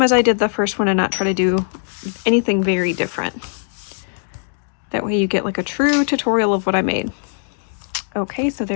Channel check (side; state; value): right; silent; digital silence